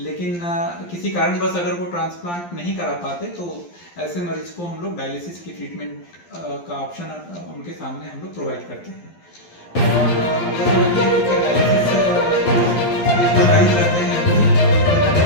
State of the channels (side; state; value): right; late; 12 ms